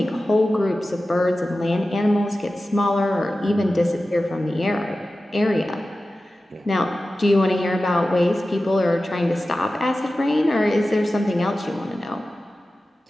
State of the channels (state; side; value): normal; both; correlation 0.95